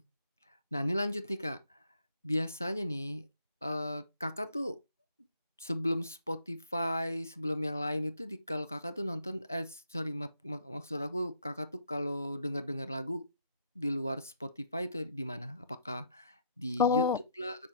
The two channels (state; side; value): inverted; both; correlation -0.68